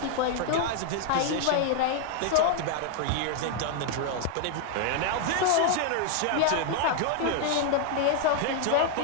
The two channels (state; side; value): different; both; correlation 0.00